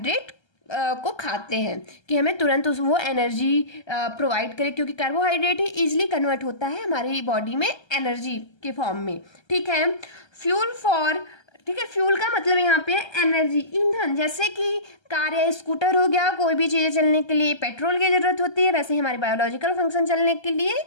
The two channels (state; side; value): late; right; 1.3 ms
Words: को खाते हैं कि हमें तुरंत वो एनर्जी प्रोवाइड करे, क्योंकि कार्बोहाइड्रेट ही इजीली कन्वर्ट होता है हमारी बॉडी में एनर्जी के फॉर्म में। ठीक है, फ्यूल फॉर, ठीक है, फ्यूल का मतलब यहाँ पे एनर्जी, ईंधन। जैसे कि कार या स्कूटर हो गया, कोई भी चीज़ें चलने के लिए पेट्रोल की ज़रूरत होती है, वैसे ही हमारे बायोलॉजिकल फंक्शन चलने के लिए